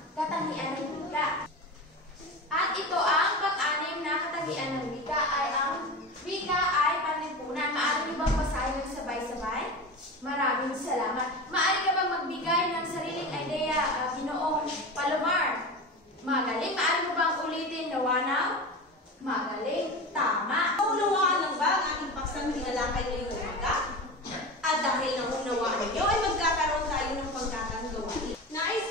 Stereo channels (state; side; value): normal; both; correlation 0.27